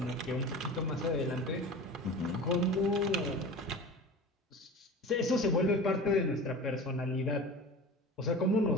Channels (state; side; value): normal; both; correlation 0.34